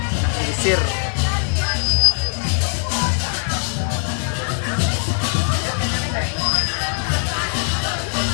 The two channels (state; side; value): silent; right; 65 dB below the other